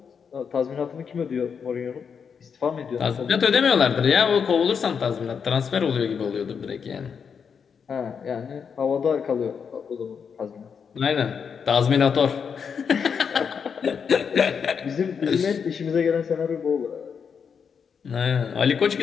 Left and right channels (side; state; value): right; quieter; 6.6 dB